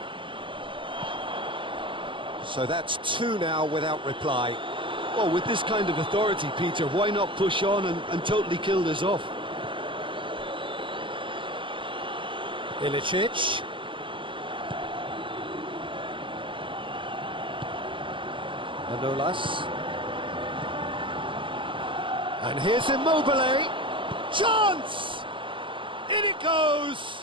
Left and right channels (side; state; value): left; late; 0.25 ms